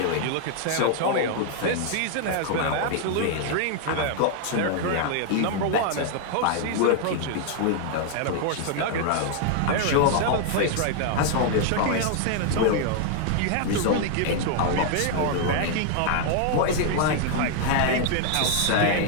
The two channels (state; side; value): different; both; correlation 0.00